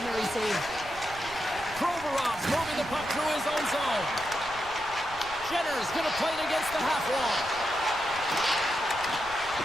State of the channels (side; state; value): right; noise; rumble, 17 dB below the sound